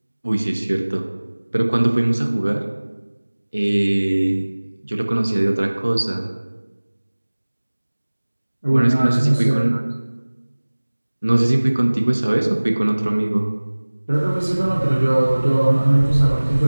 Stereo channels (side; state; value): both; inverted; correlation -1.00